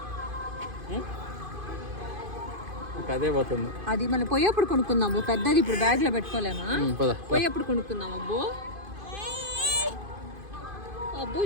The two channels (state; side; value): late; left; 2.5 ms